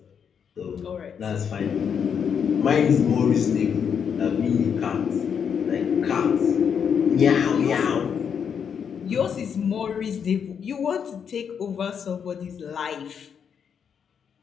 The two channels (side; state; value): right; quieter; 7.3 dB